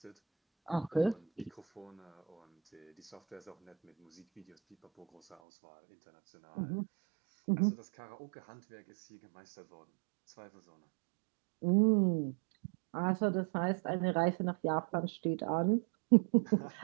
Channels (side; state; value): left; drops out; at 5.4 s